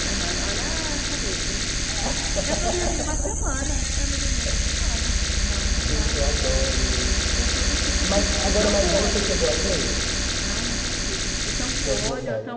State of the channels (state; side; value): identical; both; correlation 1.00